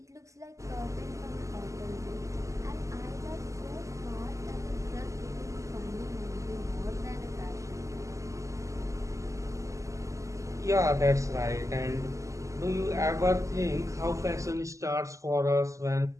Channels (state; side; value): late; left; 0.16 ms